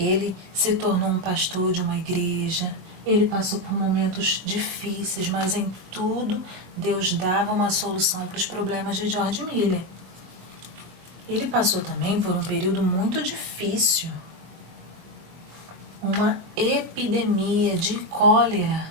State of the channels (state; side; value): late; left; 22 ms